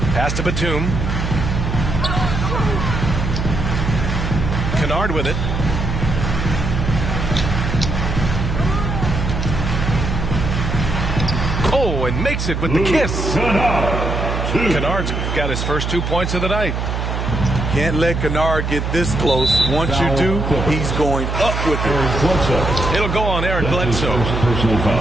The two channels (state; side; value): noise; right; hum, 2 dB below the sound